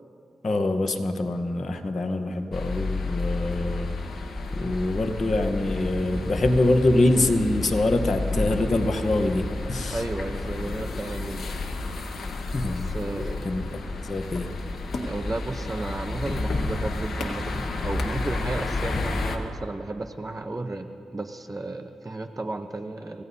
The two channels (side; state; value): both; normal; correlation 0.92